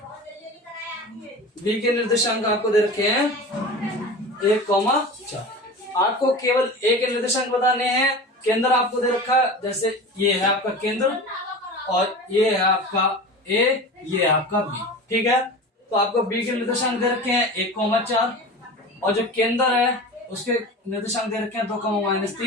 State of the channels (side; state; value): both; normal; correlation 0.33